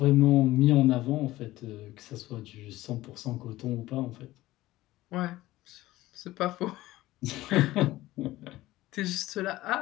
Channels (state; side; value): quieter; right; 16.9 dB